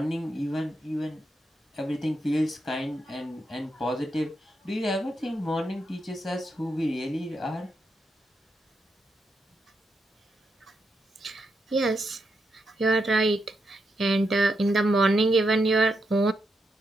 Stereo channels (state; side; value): normal; both; correlation 0.83